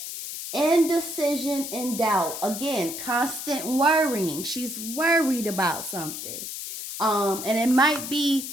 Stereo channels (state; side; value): noise; left; hiss, 7 dB below the sound